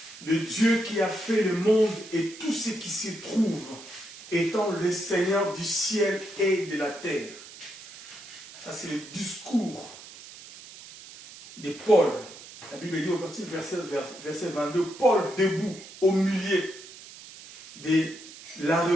Le Dieu qui a fait le monde et tout ce qui s'y trouve, étant le Seigneur du ciel et de la terre. Ça, c'est le discours de Paul. La Bible dit au partir du verset 22, Paul debout au milieu de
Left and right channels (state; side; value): noise; right; hiss, 17 dB below the sound